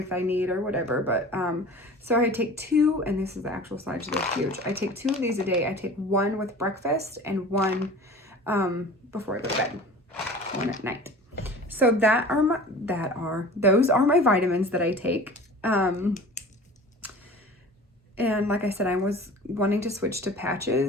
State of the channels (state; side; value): normal; both; correlation 0.40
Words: I need or whatever, but so I take 2, and this is the actual size. They're huge. I take 2 of these a day. I take 1 with breakfast and 1 before I go to bed, 1 at night. So those are my vitamins that I take. And like I said, I was wanting to switch to